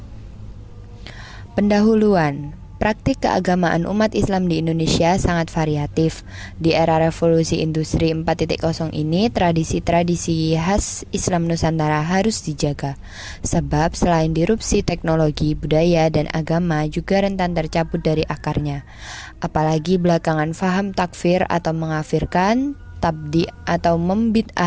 Pendahuluan. Praktik keagamaan umat Islam di Indonesia sangat variatif. Di era revolusi industri 4.0 ini, tradisi-tradisi khas Islam Nusantara harus dijaga. Sebab selain disrupsi teknologi, budaya, dan agama juga rentan tercabut dari akarnya. Apalagi belakangan faham takfir atau mengafirkan, tabdi atau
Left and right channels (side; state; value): both; identical; correlation 1.00